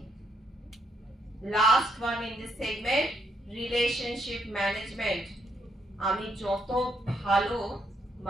Last one in this segment, relationship management. আমি যত ভালো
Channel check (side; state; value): both; normal; correlation 0.76